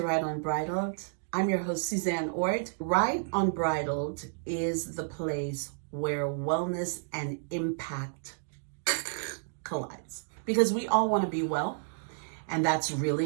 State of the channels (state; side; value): silent; left; digital silence